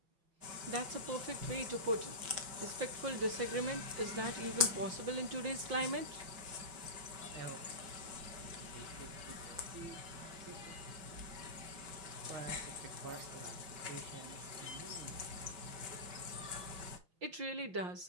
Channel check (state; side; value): late; left; 5.2 ms